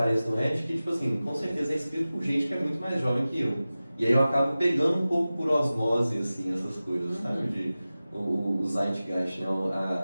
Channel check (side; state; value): both; inverted; correlation -0.96